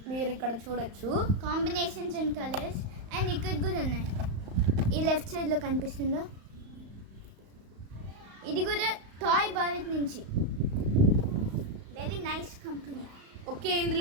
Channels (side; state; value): left; late; 35 ms